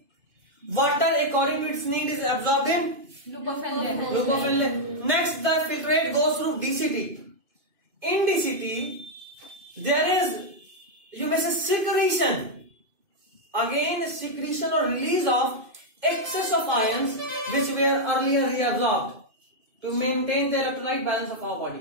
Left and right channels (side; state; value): left; late; 2.5 ms